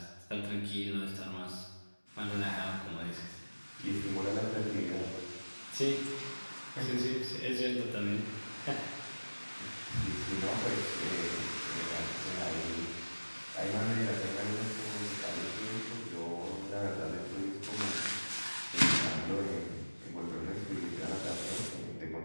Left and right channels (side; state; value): both; inverted; correlation -1.00